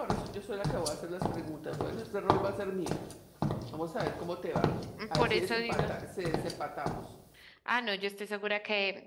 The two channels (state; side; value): identical; both; correlation 1.00